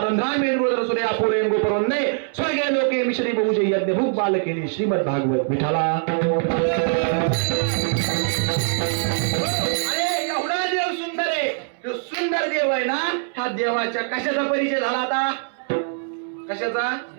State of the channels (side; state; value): left; silent; 64 dB below the other